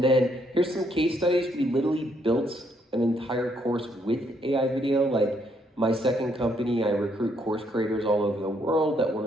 then here's some case studies. We literally built an entire course with AI video. Like my second company, I recruit course creators all over the world that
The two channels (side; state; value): both; normal; correlation 0.72